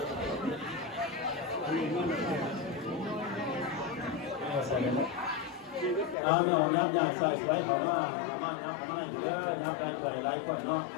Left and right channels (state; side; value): drops out; right; at 6.2 s